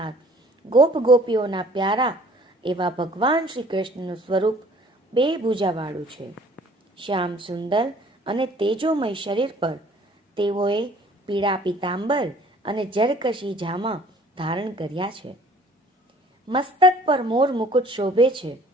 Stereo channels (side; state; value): both; normal; correlation 0.54